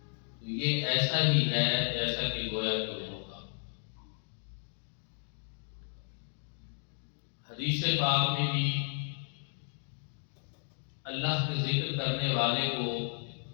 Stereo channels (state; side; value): silent; right; digital silence